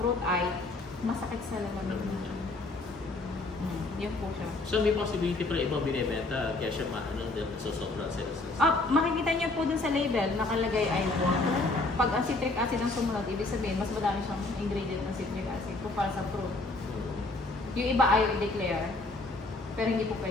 ay masakit sa lalamig niya. Yun po siya. So may possibility para ibang binibenta kaya siya sosobra sila sa... Makikita niyo po dun sa label, nakalagay ay water. Pag ang citric acid ang sumunod, ibig sabihin mas madami siyang ingredient ng citric acid kumpara sa fruit. Yung iba ayaw i-declare, pero hindi po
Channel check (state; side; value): quieter; right; 3.1 dB